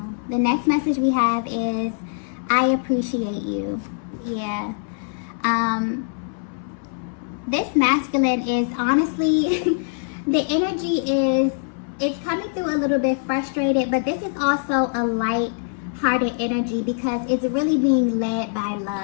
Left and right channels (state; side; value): silent; right; 62 dB below the other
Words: The next message we have is, I appreciate you. Yeah. This masculine is honestly, the energy is, it's coming through a little bit frustrated, but this is also a light-hearted energy because it's really being led by